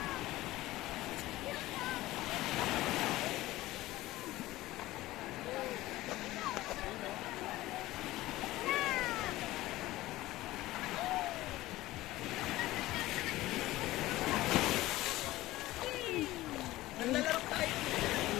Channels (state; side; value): quieter; right; 17.2 dB